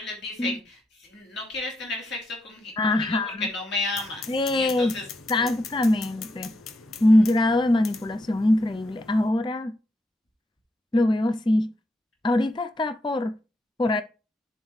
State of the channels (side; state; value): both; normal; correlation 0.81